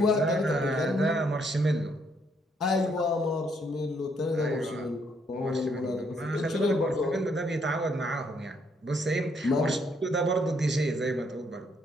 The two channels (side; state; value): both; normal; correlation 0.71